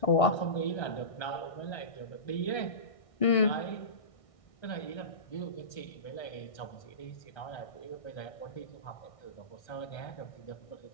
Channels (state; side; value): late; right; 1.6 ms